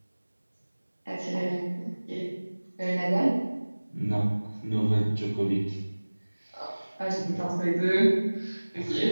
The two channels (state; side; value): inverted; both; correlation -1.00